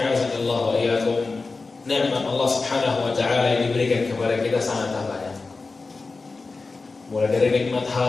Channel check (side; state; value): right; quieter; 3.9 dB